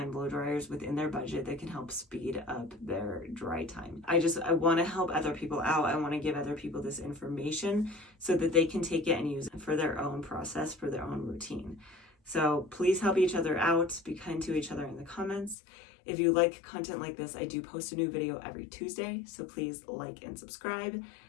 blow dryers within their budget that can help speed up their dry time. I want to help other people out. I want to give other people this information so that they can take it and use it for their own process, for their own routine. So please help each other out. Be kind to each other in the comments. If you like content like this, I do post a new video every Tuesday, so please like and subscribe.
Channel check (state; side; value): drops out; right; at 15.6 s